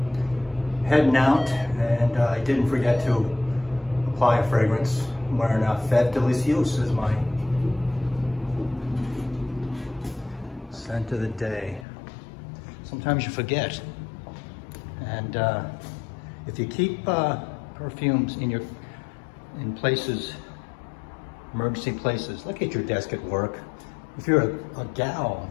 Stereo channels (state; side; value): drops out; right; at 11.9 s